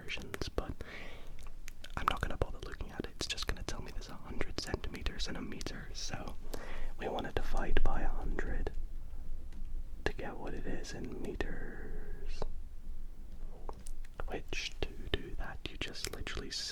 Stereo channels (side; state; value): both; identical; correlation 1.00